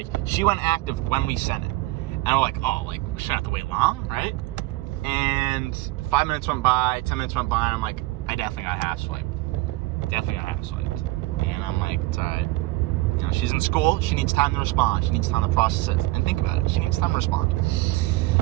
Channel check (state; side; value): quieter; left; 20.0 dB